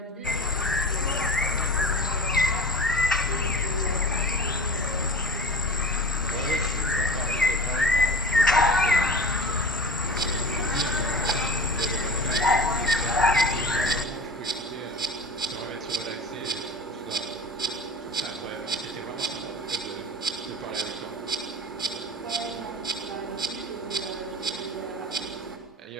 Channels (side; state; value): both; normal; correlation 0.36